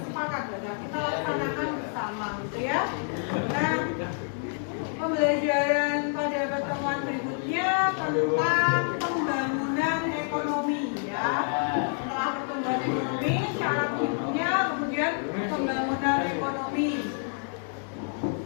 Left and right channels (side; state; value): right; silent; 56 dB below the other